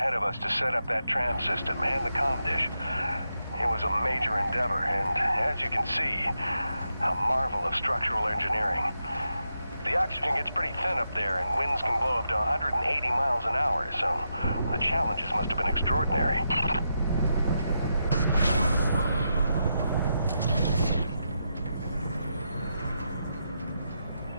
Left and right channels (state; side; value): inverted; both; correlation -0.84